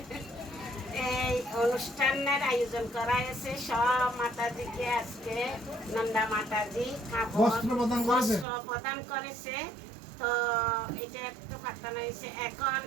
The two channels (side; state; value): left; drops out; at 8.5 s